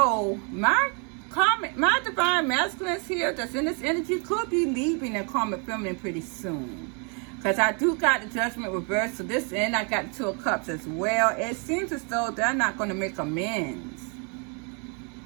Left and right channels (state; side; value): quieter; left; 36.6 dB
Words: my divine masculines here that's in this energy could be leaving their karmic feminine pretty soon. Because I do got the Judgment reversed. So this end, I got the Two of Cups as well. It seems as though they're not going to make amends